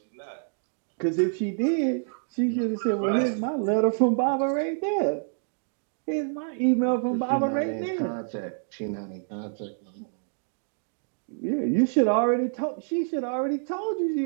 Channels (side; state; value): left; silent; digital silence